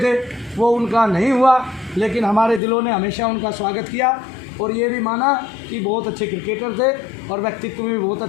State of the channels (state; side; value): drops out; right; at 2.6 s